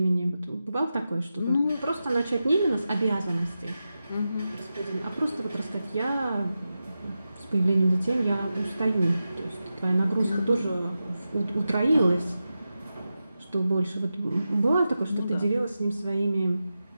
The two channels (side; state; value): both; inverted; correlation -0.91